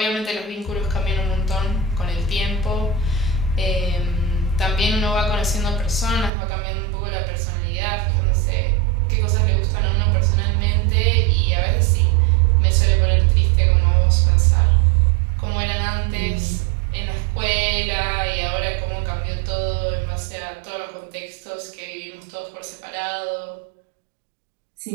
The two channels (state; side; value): drops out; left; at 6.3 s